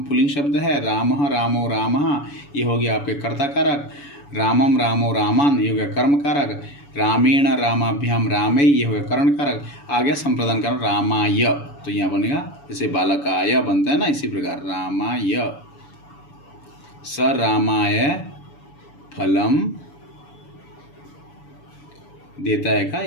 पुल्लिंग शब्द है, रामः रामो रामः, ये हो गया आपके कर्ता कारक। रामम रामो रामान, ये हो गया कर्म कारक। रामेण रामाभ्याम रामे, ये हो गया करण कारक। आ गया संप्रदान कारक रामाय, तो यहाँ बनेगा जैसे बालकाय बनता है ना, इसी प्रकार रामाय, स रामाय फलम देता है का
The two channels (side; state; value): right; late; 7.0 ms